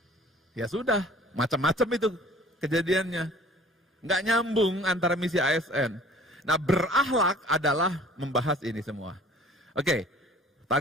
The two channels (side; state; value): both; normal; correlation 0.50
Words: Ya sudah, macam-macam itu kejadiannya. Nggak nyambung antara misi ASN. Nah, berakhlak adalah membahas ini semua. Oke.